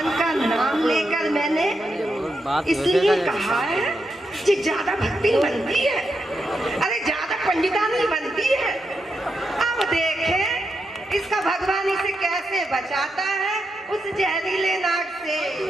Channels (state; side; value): normal; both; correlation 0.84